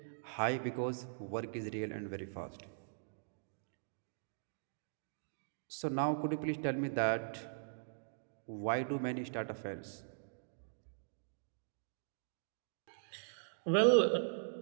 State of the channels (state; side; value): silent; left; digital silence